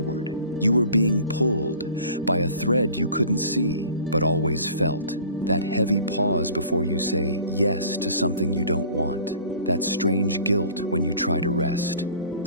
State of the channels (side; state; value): both; inverted; correlation -0.46